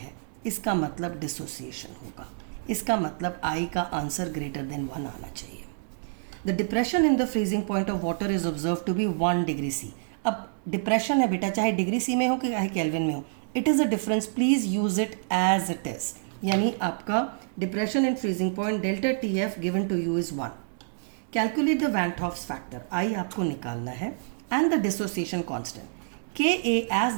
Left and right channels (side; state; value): left; silent; digital silence